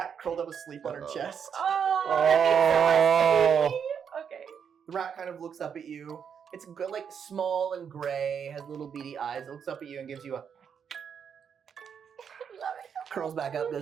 curled up asleep on her chest. Oh. Okay. The rat kind of looks up at you. It's good, like small and gray, has little beady eyes. It looks up at you and gives you a curls back up,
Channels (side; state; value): left; quieter; 7.3 dB